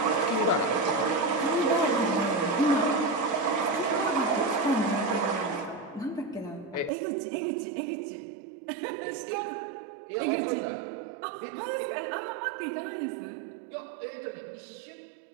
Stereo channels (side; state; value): left; drops out; at 6.9 s